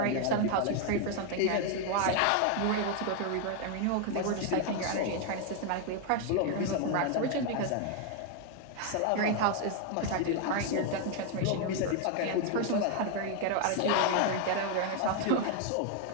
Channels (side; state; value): both; different; correlation 0.01